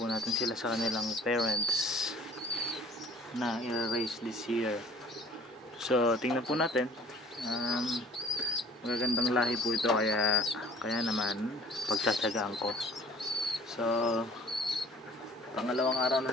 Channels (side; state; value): both; normal; correlation 0.51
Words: natin sila sa kanilang parents na i-raise this year. So tingnan po natin. Magagandang lahi po ito kaya naman pagtsatsagaan ko. So pangalawang araw na